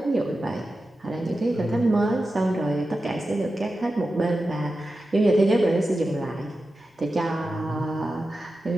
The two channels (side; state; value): both; normal; correlation 0.92